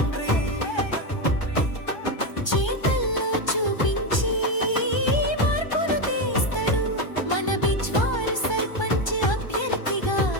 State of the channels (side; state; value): right; late; 1.3 ms